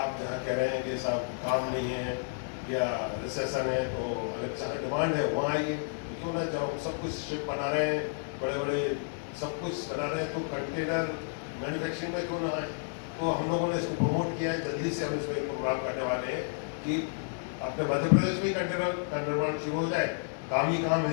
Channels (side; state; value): right; silent; digital silence